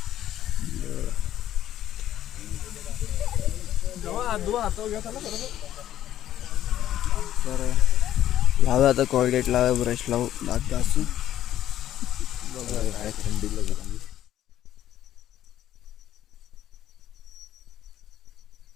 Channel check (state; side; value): quieter; right; 12.1 dB